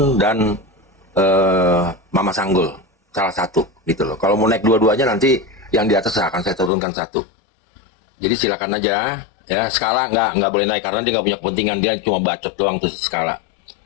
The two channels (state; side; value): drops out; right; at 6.7 s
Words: dan Mama Sanggul. Salah satu gitu loh. Kalau mau naik dua-duanya nanti yang di atas akan saya turunkan 1. Jadi silakan aja ya. Skala nggak boleh naik karena dia nggak punya kepentingan, dia cuma bacot doang tuh skala.